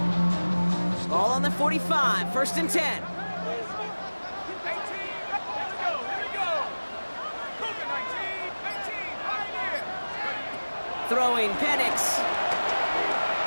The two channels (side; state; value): both; inverted; correlation -1.00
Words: Ball on the 45, 1st and 10. Throwing, Penix.